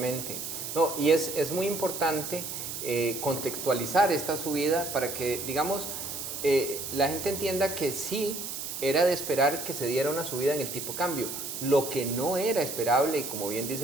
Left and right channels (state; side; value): noise; right; hiss, 6 dB below the sound